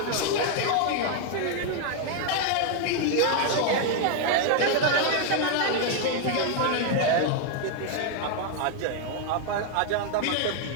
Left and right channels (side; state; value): both; different; correlation 0.00